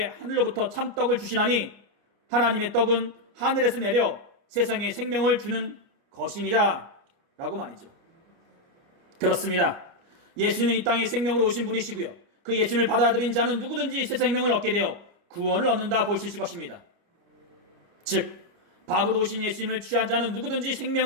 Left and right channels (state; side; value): late; left; 29 ms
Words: 하늘로부터 참떡을 주시나니 하나님의 떡은 하늘에서 내려 세상에 생명을 주는 것이니라 라고 말이죠. 그렇습니다. 예수는 이 땅에 생명으로 오신 분이시고요, 그 예수님을 받아들인 자는 누구든지 새 생명을 얻게 되어 구원을 얻는다 볼 수 있을 것입니다. 즉 밥으로 오신 예수님을 취한 자는 누구든지